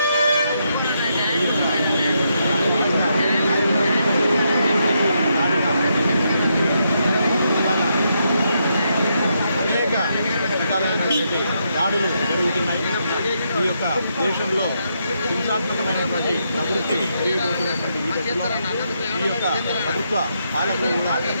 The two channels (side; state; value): both; inverted; correlation -0.80